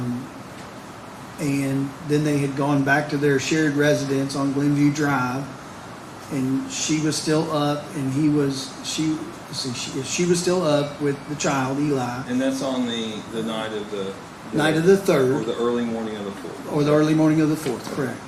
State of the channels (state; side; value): identical; both; correlation 1.00